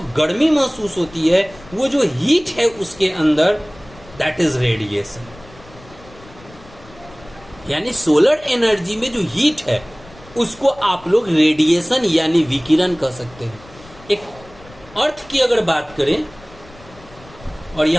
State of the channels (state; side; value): noise; left; rumble, 22 dB below the sound